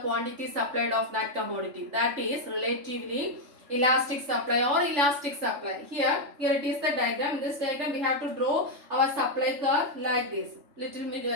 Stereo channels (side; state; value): left; late; 3.5 ms